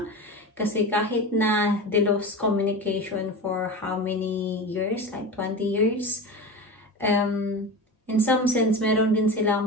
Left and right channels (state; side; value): normal; both; correlation 0.27